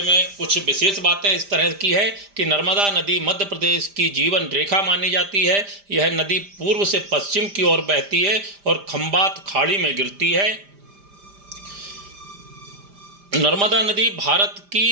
में कुछ विशेष बातें इस तरह की है कि नर्मदा नदी मध्य प्रदेश की जीवन रेखा मानी जाती है। यह नदी पूर्व से पश्चिम की ओर बहती है और खंबात खाड़ी में गिरती है। नर्मदा नदी भारत की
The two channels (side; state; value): left; late; 5.0 ms